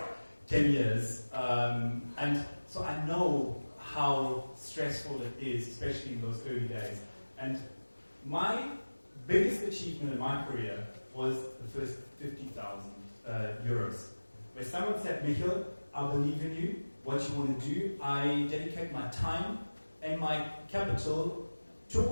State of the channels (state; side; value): inverted; both; correlation -1.00